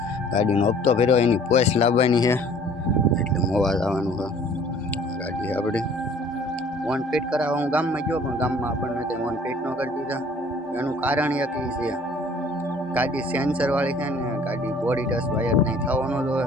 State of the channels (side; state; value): both; normal; correlation 0.53